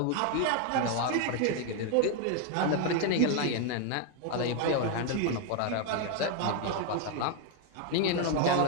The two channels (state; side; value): different; both; correlation 0.01